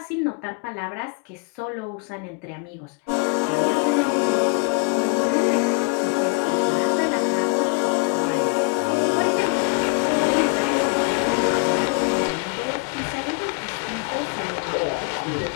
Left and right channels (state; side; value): quieter; right; 33.0 dB